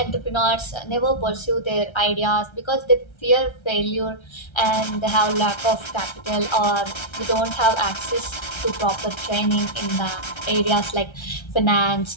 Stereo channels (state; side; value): late; right; 1.3 ms